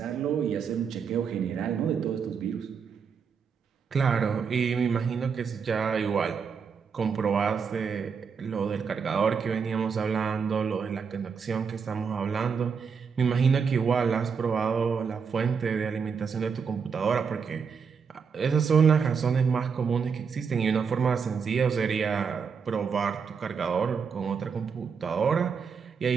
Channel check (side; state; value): left; quieter; 6.1 dB